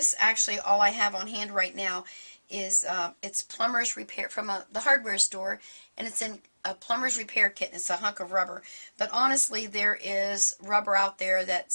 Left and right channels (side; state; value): both; inverted; correlation -1.00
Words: actually, all I have on hand right now is, it's plumber's repair from the hardware store, and it's in a plumber's repair kit, and it's a hunk of rubber. But honestly, there is rubber out there that